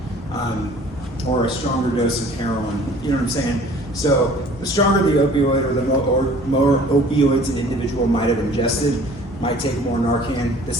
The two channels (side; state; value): both; normal; correlation 0.50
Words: or a stronger dose of heroin. You know what I'm saying? So the stronger the opioid or the more opioids an individual might have ingested, might take more Narcan. The